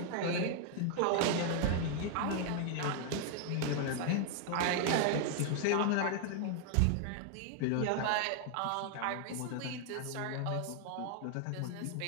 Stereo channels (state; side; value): different; both; correlation 0.00